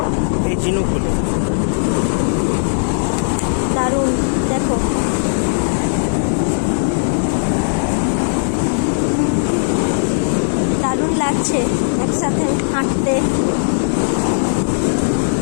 এই ঝিনুকগুলো। দারুণ দেখো। দারুণ লাগছে একসাথে হাঁটতে।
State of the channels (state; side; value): silent; right; digital silence